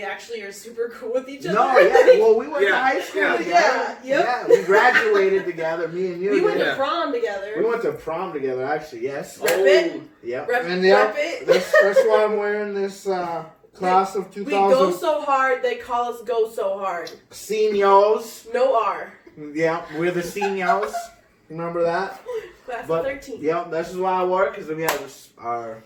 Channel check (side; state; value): both; identical; correlation 1.00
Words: actually are super cool with each other. No, yeah. Well, we went to high school Yeah. together. Yep. Yeah, we graduated together. Me and you. We went did. to prom together. We went to prom together, actually. Yes. Rep it. Yep. Rep, And rep it. that's why I'm wearing this class of We go 2000 so hard, they call us go so hard. seniors. No R. Yeah, we're the seniors. Remember that? Class But, of 13. Yeah, this is why I work, because we have